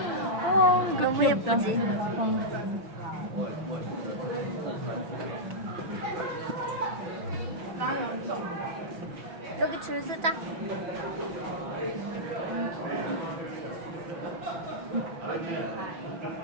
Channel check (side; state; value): left; late; 5.9 ms